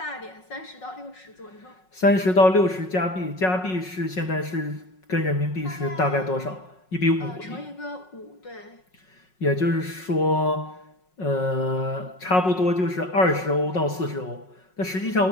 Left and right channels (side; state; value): right; late; 5.4 ms